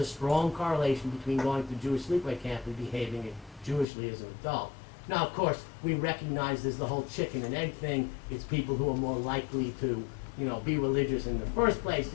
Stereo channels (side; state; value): right; drops out; at 3.9 s